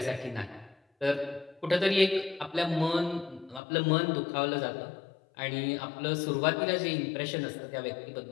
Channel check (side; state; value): right; drops out; at 3.6 s